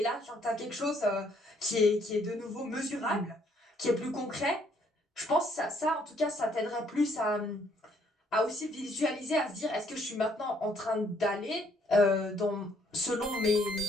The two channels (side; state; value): both; normal; correlation 0.67